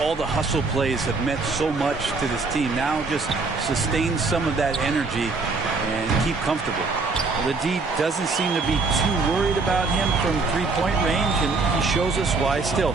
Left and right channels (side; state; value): left; quieter; 4.0 dB